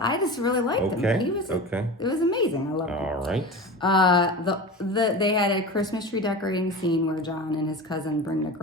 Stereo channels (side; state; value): both; normal; correlation 0.31